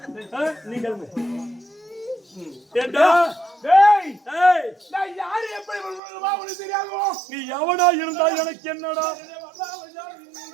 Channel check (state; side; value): drops out; left; at 6.0 s